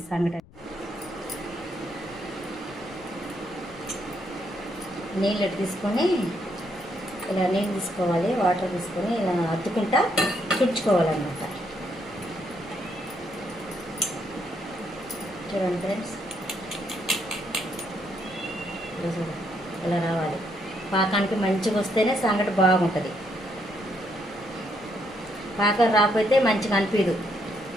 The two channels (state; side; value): noise; left; rumble, 23 dB below the sound